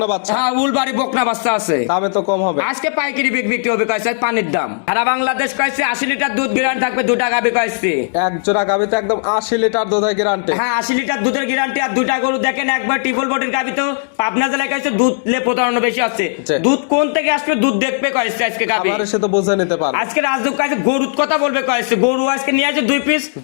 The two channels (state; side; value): silent; right; digital silence